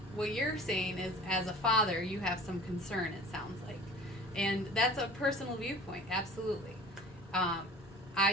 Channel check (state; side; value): normal; both; correlation 0.42